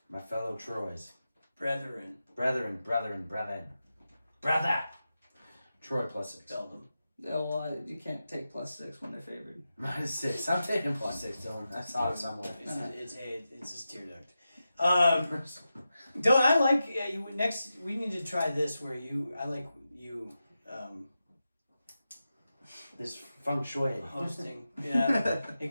My fellow Troys. Brethren. Brethren. Brother! Troy plus 6. Spell them. Oh, well, you can't take +6 when they're favored. Minus 6. I'm taking plus 6, Dylan. I saw it somewhere. It's just tear duct. Dylan, I like you. Next, we need to try this where This feng shui. hosting. Yeah, it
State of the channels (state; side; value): inverted; both; correlation -0.91